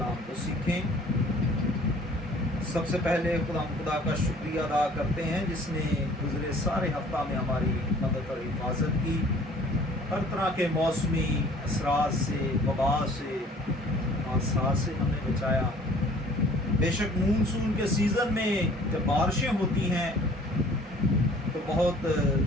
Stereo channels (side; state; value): both; normal; correlation 0.53